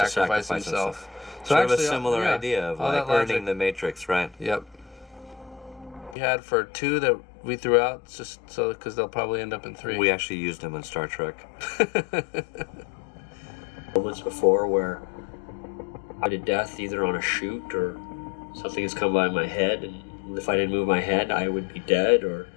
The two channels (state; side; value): drops out; right; at 6.2 s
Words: himself. So sort of a similar idea of like earning the Matrix, right? Yep. We had for 2 that we threw out, just so because they'll probably end up in 3. We actually used them in Star Trek. Moments before where I did death either on a shoot or something has come by my head, and if I didn't move my head, I would be dead. Or